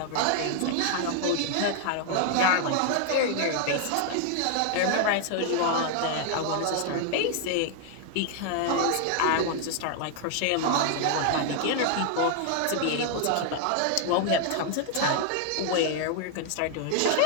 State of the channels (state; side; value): different; both; correlation 0.00